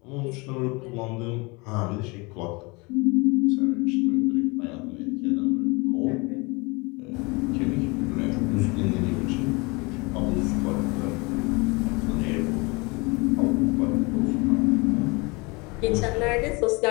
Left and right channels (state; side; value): quieter; right; 27.2 dB